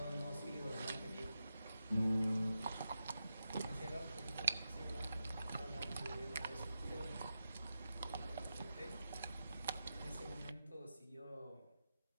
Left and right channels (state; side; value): inverted; both; correlation -0.88